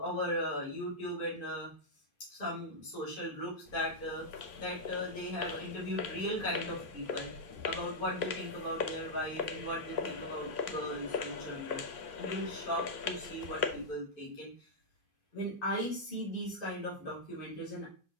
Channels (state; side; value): late; right; 2.5 ms